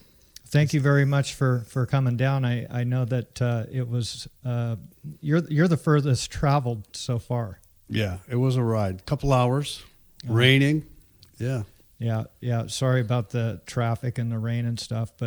Thank you very much for coming down. I know that it was you're the furthest traveled so far. Yeah, it was a ride. Couple hours, raining. Yeah. Yeah. Sorry about the traffic and the rain and stuff,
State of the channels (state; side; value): identical; both; correlation 1.00